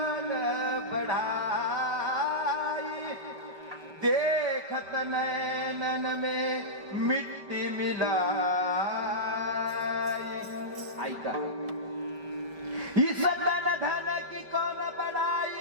बढ़ाई, देखत नैनन में मिट्टी मिलाई. ऐका, इस धन धन की कौन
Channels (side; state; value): left; late; 5.2 ms